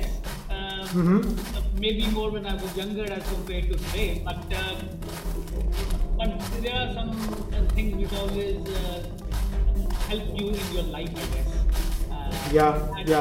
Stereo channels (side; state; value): both; identical; correlation 1.00